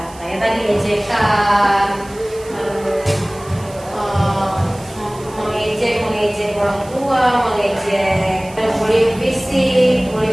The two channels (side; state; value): right; noise; hiss, 21 dB below the sound